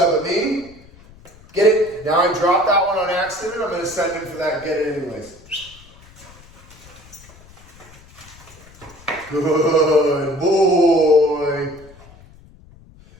at me. Get it. Now I dropped that one on accident. I'm going to send him for that. Get it anyways. Good boy.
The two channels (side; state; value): left; noise; rumble, 24 dB below the sound